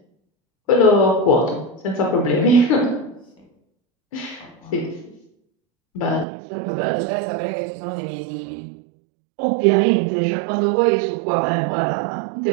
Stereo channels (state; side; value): drops out; left; at 6.2 s